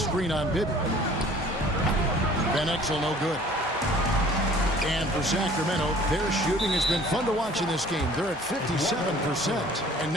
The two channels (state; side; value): normal; both; correlation 0.51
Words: on Bibby. Van Exel no good. And for Sacramento, their shooting has been fun to watch in this game. They're at 57%. And